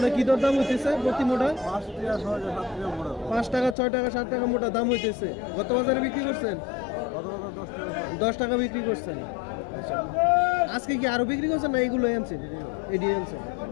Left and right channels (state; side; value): drops out; right; at 3.8 s